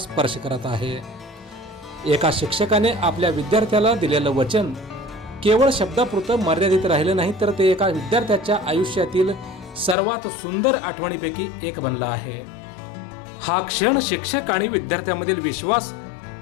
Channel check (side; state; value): right; drops out; at 10.0 s